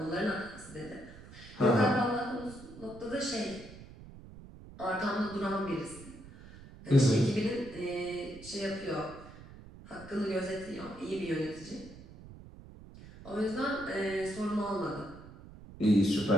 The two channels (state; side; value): noise; right; rumble, 17 dB below the sound